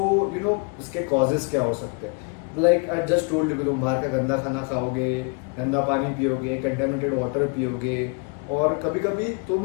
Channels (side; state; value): right; quieter; 33.0 dB